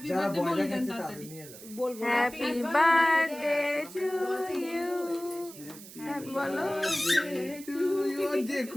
বার্থডে বলে দেন তাড়াতাড়ি বলবো হ্যাপি বার্থডে টু ইউ বলো যে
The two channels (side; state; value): right; noise; hiss, 16 dB below the sound